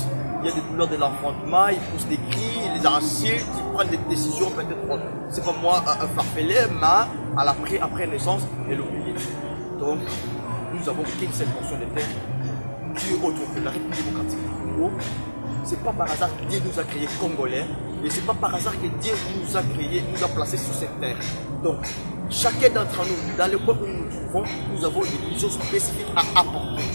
Il y a des douleurs de l'enfantement, ils poussent des cris, ils les insultent, ils prennent des décisions peut-être, c'est comme moi, farfelées, mais après naissance, elle oublie. Donc, nous avons qu'une seule portion de terre, Dieu autre que la République démocratique du Congo. C'est pas par hasard que Dieu nous a créés Congolais et c'est pas par hasard que Dieu nous a créés, nous a placés sur cette terre. Donc, chacun d'entre nous, dans le point où nous nous trouvons, nous avons des missions spécifiques à apporter.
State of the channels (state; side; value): inverted; both; correlation -1.00